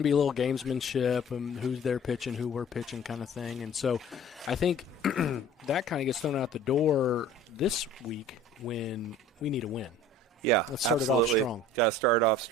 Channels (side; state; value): both; normal; correlation 0.47